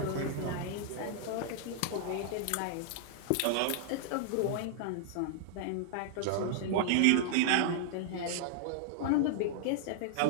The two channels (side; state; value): both; different; correlation -0.01